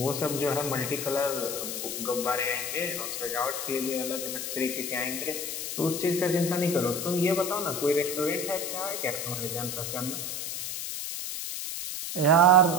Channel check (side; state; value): left; noise; hiss, 4 dB below the sound